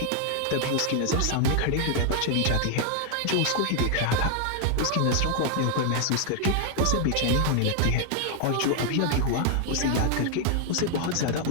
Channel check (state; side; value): different; both; correlation 0.00